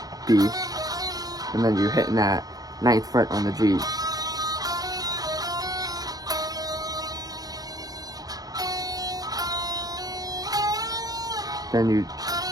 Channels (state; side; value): late; left; 0.18 ms